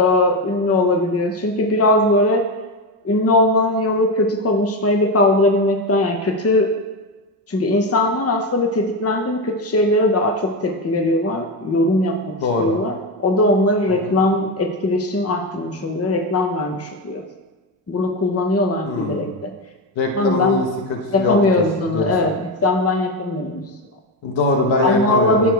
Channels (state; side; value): normal; both; correlation 0.13